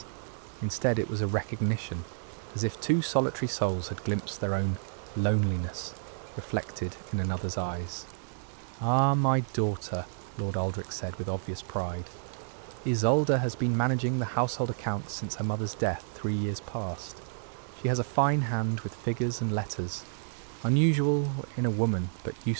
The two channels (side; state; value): left; silent; digital silence